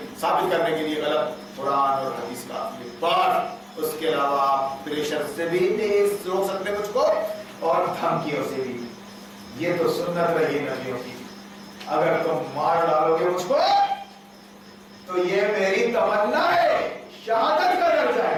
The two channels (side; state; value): both; identical; correlation 1.00